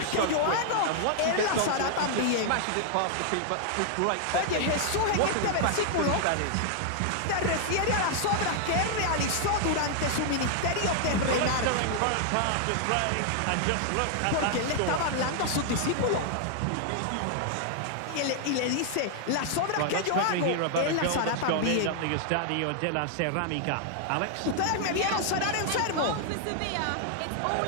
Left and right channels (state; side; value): different; both; correlation 0.00